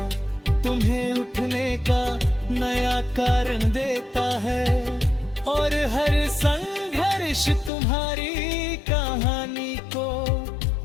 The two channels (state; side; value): drops out; right; at 7.7 s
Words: तुम्हें उठने का नया कारण देता है, और हर संघर्ष तुम्हारी कहानी को